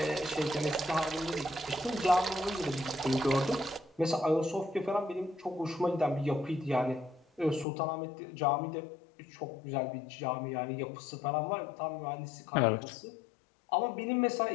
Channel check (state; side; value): drops out; right; at 7.7 s